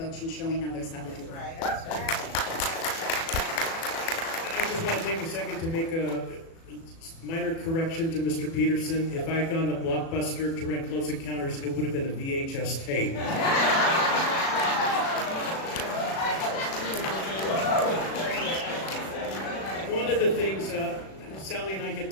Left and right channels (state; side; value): late; right; 36 ms